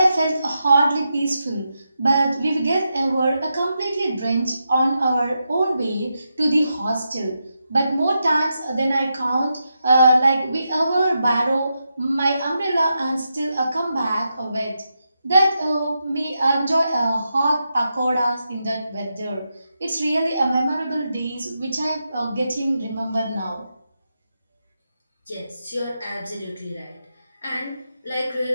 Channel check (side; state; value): both; inverted; correlation -0.86